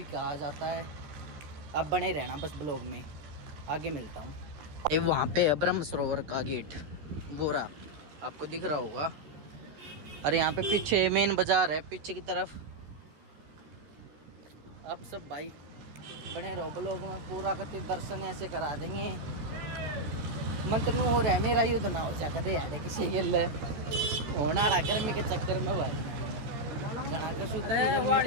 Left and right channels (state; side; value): late; left; 13 ms